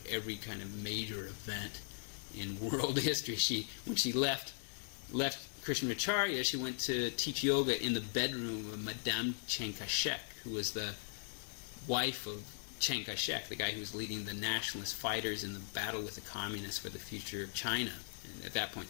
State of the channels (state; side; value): silent; right; digital silence